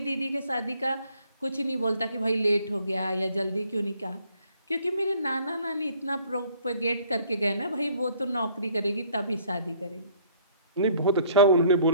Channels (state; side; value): inverted; both; correlation -0.60